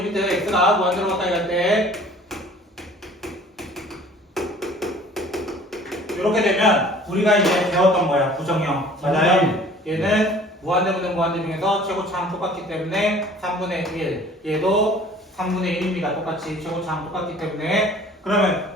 x가 무한대로 가까이 갈 때 이렇게 되면 우리가 이제 배웠던 거야. 부정형. 맞아요? 얘는 무한대분의 무한대 중에서 최고차항 똑같기 때문에 3분의 1. 얘도 3분의 1입니다. 똑같이 최고차항 똑같기 때문에 그러면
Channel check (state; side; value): normal; both; correlation 0.50